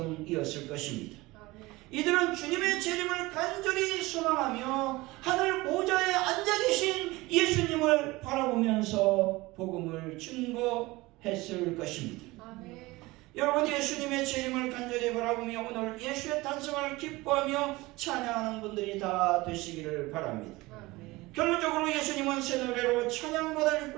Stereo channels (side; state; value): left; quieter; 21.0 dB